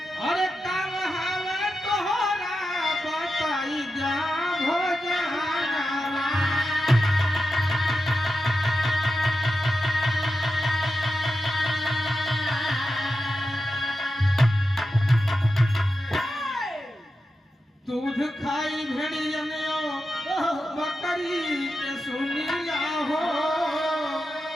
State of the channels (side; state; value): both; normal; correlation 0.90